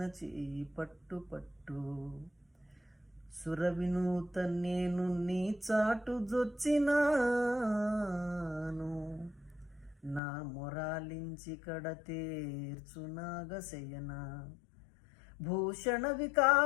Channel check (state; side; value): drops out; right; at 10.2 s